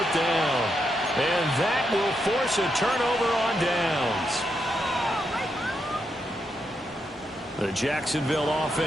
down. And that will force a turnover on downs. The Jacksonville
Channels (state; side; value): normal; both; correlation 0.82